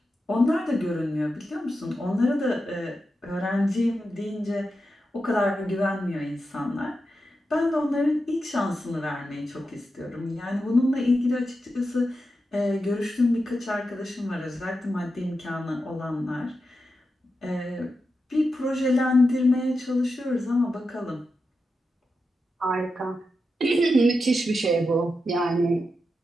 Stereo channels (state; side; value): normal; both; correlation 0.89